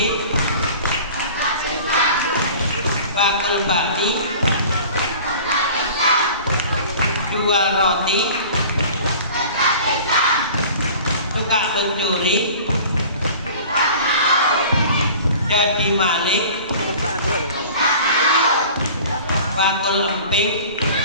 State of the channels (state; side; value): inverted; both; correlation -0.43